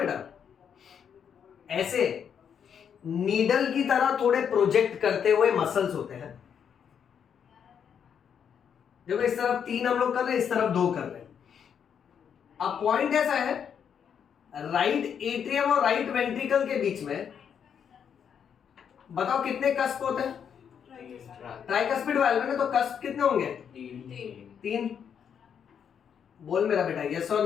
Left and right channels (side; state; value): right; quieter; 7.8 dB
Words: ऐसे नीडल की तरह थोड़े प्रोजेक्ट करते हुए मसल्स होते हैं। देखो इस तरफ 3 हम लोग कर रहे हैं, इस तरफ 2 कर रहे हैं। अब पॉइंट ऐसा है, राइट एट्रियम और राइट वेंट्रिकल के बीच में बताओ कितने कस्प होते हैं? ट्राइकस्पिड वाल्व में तो कस्प कितने होंगे? 3। बोल मेरा बेटा, यस और